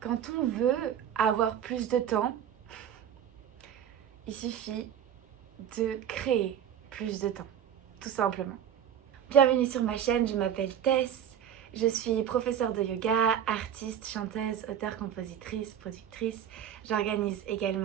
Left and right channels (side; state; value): left; quieter; 9.3 dB